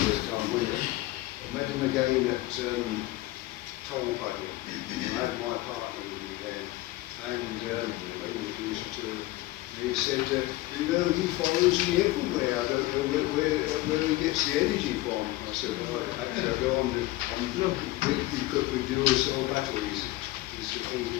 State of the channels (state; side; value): quieter; right; 18.1 dB